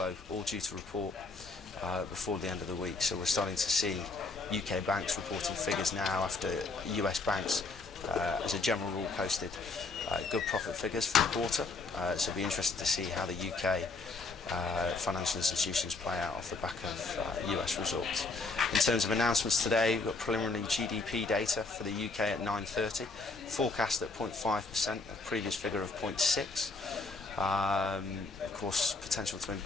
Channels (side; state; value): right; quieter; 3.7 dB